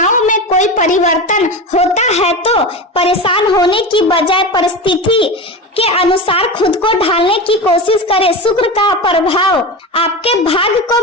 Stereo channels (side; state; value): both; normal; correlation 0.25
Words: में कोई परिवर्तन होता है तो परेशान होने की बजाय परिस्थिति के अनुसार खुद को ढालने की कोशिश करें। शुक्र का प्रभाव आपके भाग्य को